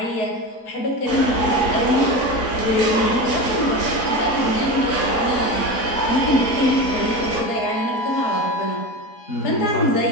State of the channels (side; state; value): right; late; 3.6 ms